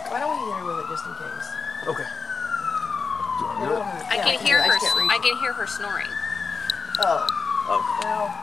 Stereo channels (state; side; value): quieter; right; 4.9 dB